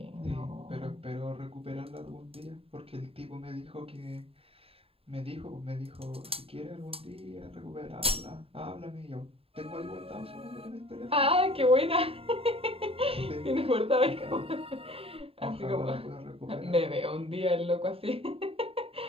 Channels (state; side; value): late; left; 0.28 ms